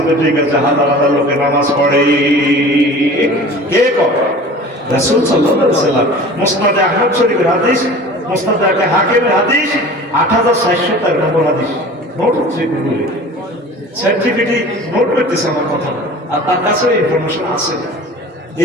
ঠিক আছে হাজার হাজার লোকের নামাজ পড়ে কে করে রাসূল সাল্লাল্লাহু আলাইহি ওয়াসাল্লাম মুসনাদে আহমদ শরীফের হাদিস মুসনাদে হাকিমের হাদিস ৮৬০০ নম্বর হাদিস নোট হচ্ছে গুগলে সার্টিফিকেট নোট করতেছে আমার কথা আর তার কাছে ইনফরমেশন আছে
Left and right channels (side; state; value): both; normal; correlation 0.41